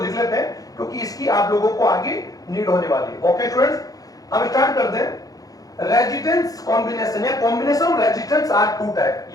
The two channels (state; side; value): late; right; 0.18 ms